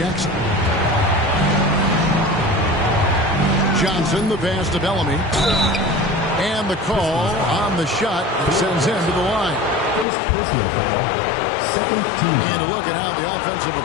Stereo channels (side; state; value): right; drops out; at 10.1 s